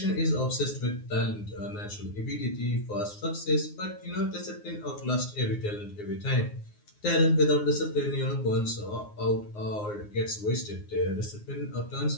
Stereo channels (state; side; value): late; right; 9.6 ms